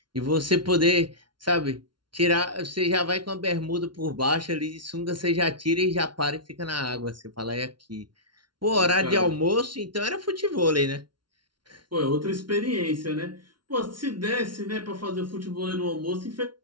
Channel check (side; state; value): left; late; 0.71 ms